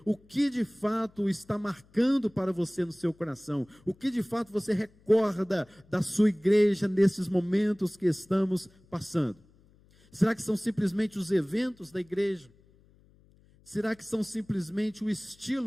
o que de fato está marcando para você no seu coração? O que de fato você recorda da sua igreja nesses momentos que estamos passando? Será que são simplesmente os eventos da igreja? Será que são simplesmente o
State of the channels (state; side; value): noise; left; hum, 30 dB below the sound